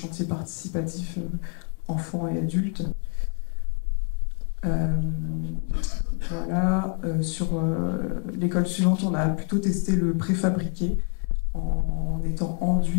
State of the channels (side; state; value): right; quieter; 39.4 dB